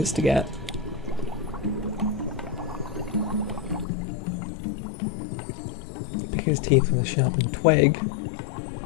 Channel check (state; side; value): drops out; right; at 3.9 s